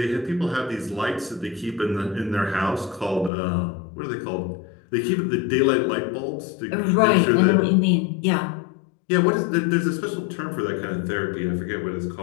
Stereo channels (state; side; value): drops out; right; at 3.3 s